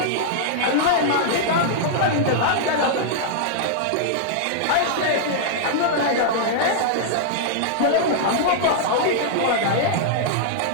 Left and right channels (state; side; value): different; both; correlation -0.01